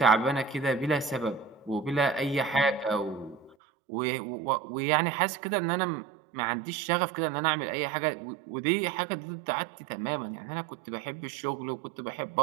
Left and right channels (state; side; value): drops out; left; at 3.6 s